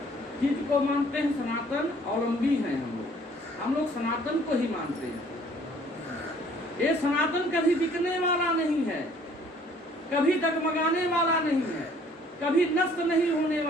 चीज को मानते हैं? सनातन अवलंबी हैं हम लोग सनातन को ही मानते हैं। ये सनातन कभी बिकने वाला नहीं है, कभी डगमगाने वाला नहीं है, कभी नष्ट नहीं होने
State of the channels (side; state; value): both; normal; correlation 0.57